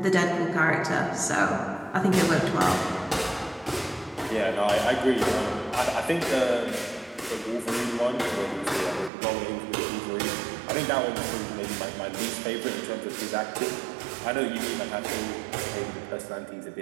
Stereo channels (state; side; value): drops out; left; at 9.1 s